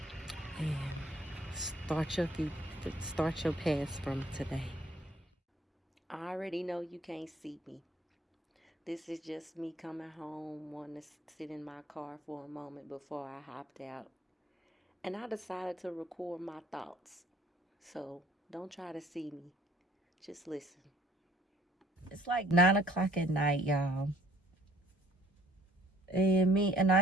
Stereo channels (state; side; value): normal; both; correlation 0.59